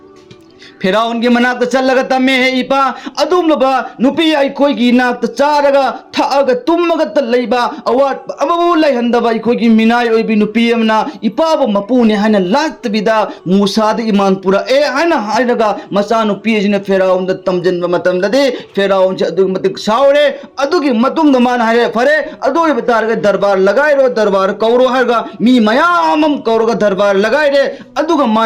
फेराउन की मनाक चल्लगा तम्मे है इपा अदुमलबा नुपी अइखोइगी नाक चारगा थागा तुमगा त लैबा अवाट अबबु लैहंदबा अइखोइगी मिनाई ओइबि नुपी अमना इपाबो मपुने हाना लातबिदा मूसा द ईमान पुरा ए हाना हायरगा मचा नुपी जिने फेराउन द तमजनबा मतमददे फेराउन से अदुग मतिक सावरे अदुगी मतुंग द मान हारे फरे अदुई बतारगा दरबार लगाइरो दरबार कौरो हारगा मी मयामम कौरोगा दरबार लगाइरे अदुगा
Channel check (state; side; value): identical; both; correlation 1.00